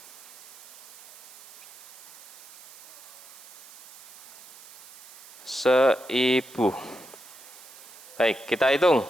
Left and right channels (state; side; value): noise; right; hiss, 19 dB below the sound